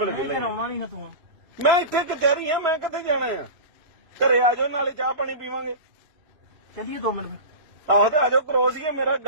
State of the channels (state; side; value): late; left; 2.9 ms